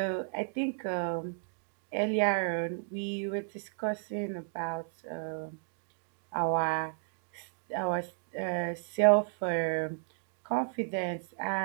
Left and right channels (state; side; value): silent; left; digital silence